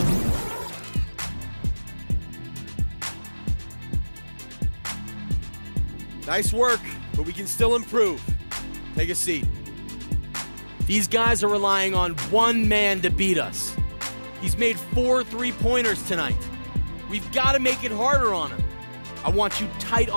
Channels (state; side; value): inverted; both; correlation -1.00